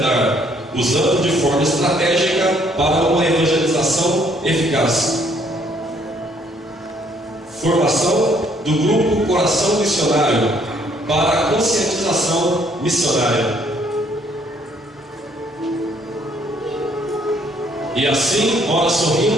usando de forma estratégica para uma evangelização eficaz. Formação do grupo Coração Missionário para a conscientização missionária. E assim, ora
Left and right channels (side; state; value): both; normal; correlation 0.65